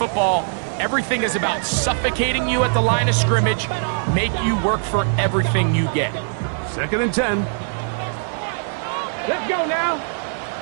Everything is about suffocating you at the line of scrimmage, make you work for everything you get. 2nd and 10. Let's go now.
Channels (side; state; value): left; silent; 61 dB below the other